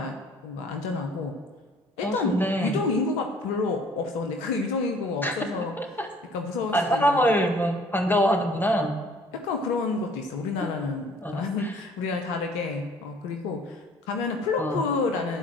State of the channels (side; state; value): both; normal; correlation 0.54